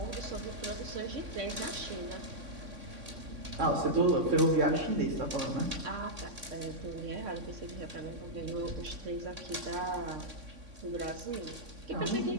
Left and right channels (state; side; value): late; left; 3.6 ms